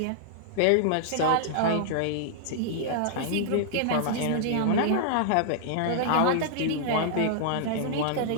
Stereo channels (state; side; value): different; both; correlation -0.01